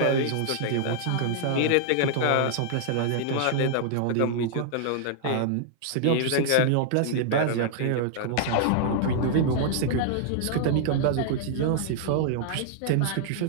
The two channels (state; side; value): different; both; correlation -0.01